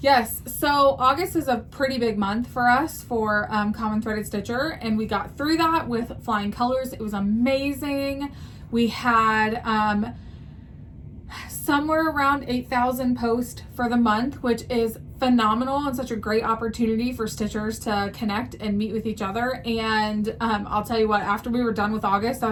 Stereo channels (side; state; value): both; identical; correlation 1.00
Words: so August is a pretty big month for us for Common Threaded Stitcher, and we got through that with flying colors. It was amazing. We had somewhere around 8,000 posts for the month, which is phenomenal and such a great opportunity for stitchers to connect and meet with each other. And I'll tell you what, after we were done with August, I